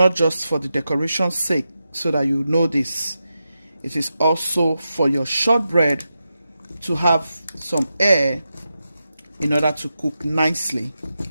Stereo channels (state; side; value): inverted; both; correlation -0.89